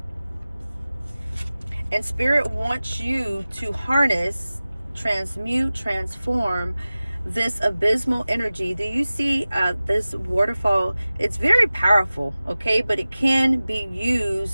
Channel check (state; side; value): inverted; both; correlation -0.97